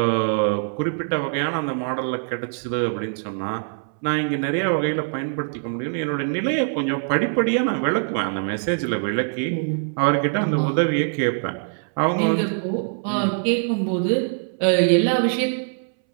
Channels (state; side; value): silent; left; 63 dB below the other